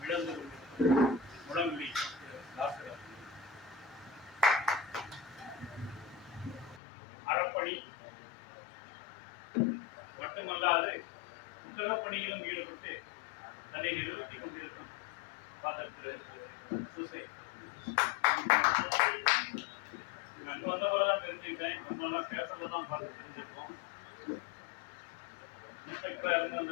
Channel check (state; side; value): drops out; right; at 6.8 s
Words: விளந்து கொண்டிருக்கும் முழங்குடி டாக்டர் அறப்பணி மட்டுமல்லாது புத்தக பணியிலும் ஈடுபட்டு தன்னை நிறுத்திக் கொண்டிருக்கும் ஃபாதர் திரு சூசை. அங்க வந்த போலதான் தெரிஞ்சுக்கிட்டேன். நம்மளாம் பேப்பர்ல தான் பார்த்து தெரிஞ்சிருக்கோம். இன்ஸ்பெக்டரா இருந்த